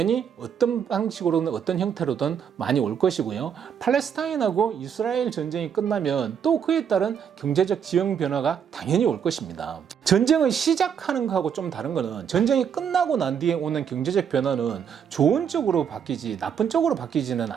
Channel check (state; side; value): quieter; left; 7.8 dB